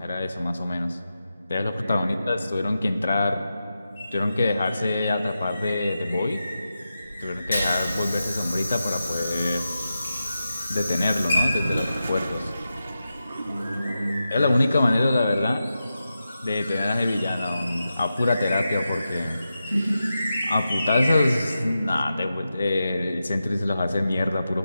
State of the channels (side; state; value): both; inverted; correlation -0.91